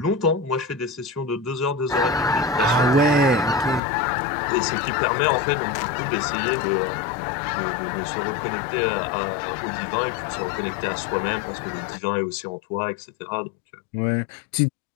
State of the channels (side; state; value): right; drops out; at 3.8 s